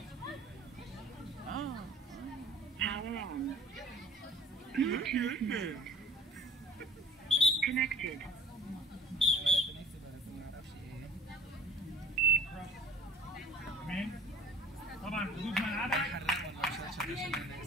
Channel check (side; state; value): both; normal; correlation 0.47